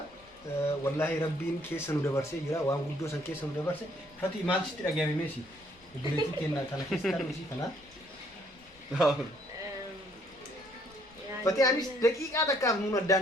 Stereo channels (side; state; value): left; noise; rumble, 28 dB below the sound